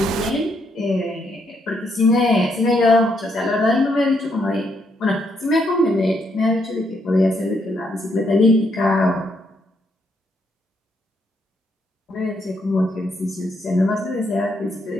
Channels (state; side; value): normal; both; correlation 0.76